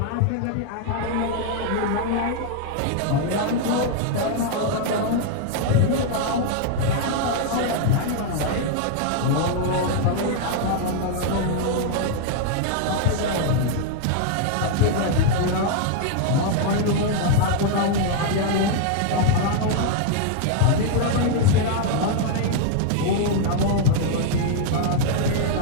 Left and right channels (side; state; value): both; different; correlation 0.00